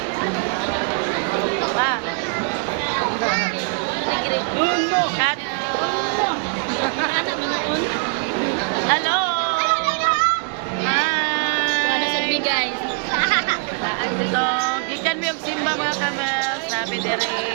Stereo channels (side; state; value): left; quieter; 39.6 dB